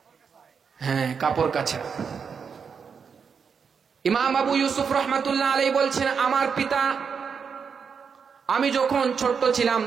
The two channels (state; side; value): quieter; left; 6.2 dB